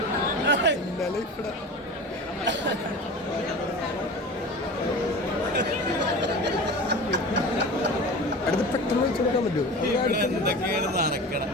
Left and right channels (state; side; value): normal; both; correlation 0.34